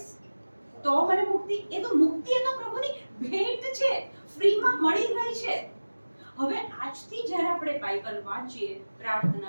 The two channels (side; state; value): both; inverted; correlation -1.00